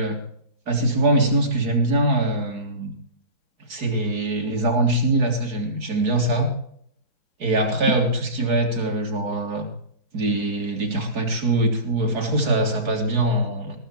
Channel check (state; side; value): late; left; 4.7 ms